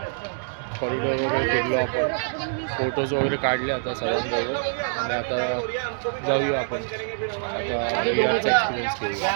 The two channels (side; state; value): left; silent; 62 dB below the other